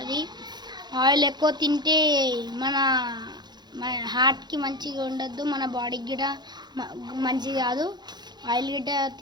ఆయిల్ ఎక్కువ తింటే మన హార్ట్కి మంచిగా ఉండద్దు, మన బాడీకి గిట్ట మంచిది కాదు. ఆయిల్ గిట్ట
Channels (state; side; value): late; left; 0.21 ms